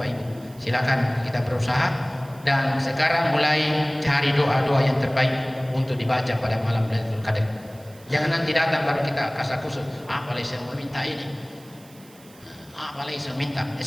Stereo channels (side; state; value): right; noise; hiss, 25 dB below the sound